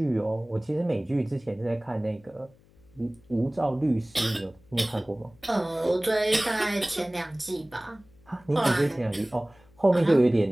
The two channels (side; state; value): left; noise; hum, 29 dB below the sound